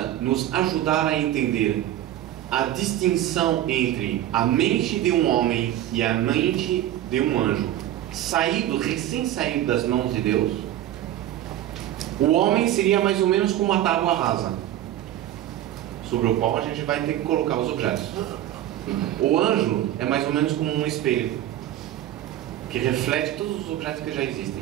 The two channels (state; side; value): quieter; left; 12.8 dB